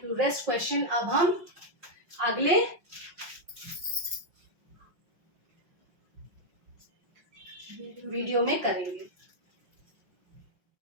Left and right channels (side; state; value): left; late; 5.7 ms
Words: you. रेस्ट क्वेश्चन अब हम अगले वीडियो में करेंगे।